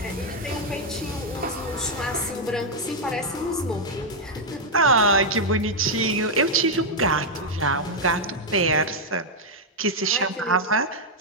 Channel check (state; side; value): normal; both; correlation -0.01